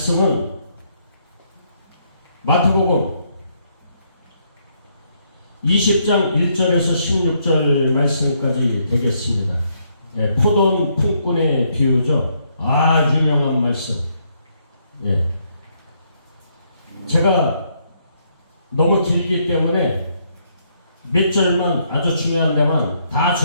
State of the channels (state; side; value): inverted; both; correlation -0.73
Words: 마태복음 20장 1절에서 16절 말씀까지 되겠습니다. 예, 포도원 품꾼의 비유죠. 유명한 말씀. 예. 제가 너무 길기 때문에 몇 절만, 아주 중요한 데만, 다